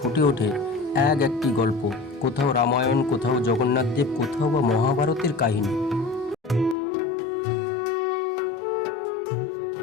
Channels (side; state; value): right; drops out; at 6.8 s